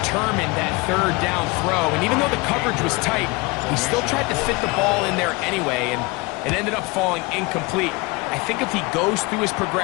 that third down throw, and even though the coverage was tight, he still tried to fit the ball in there anyway, and it ended up falling incomplete. I think if he goes through his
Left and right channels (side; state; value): right; quieter; 25.1 dB